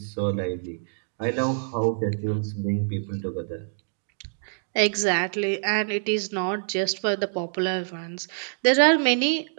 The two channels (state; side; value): silent; left; digital silence